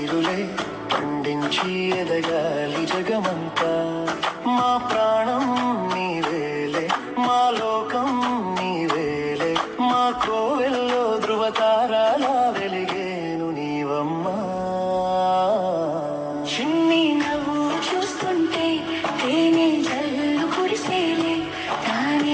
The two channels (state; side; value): identical; both; correlation 1.00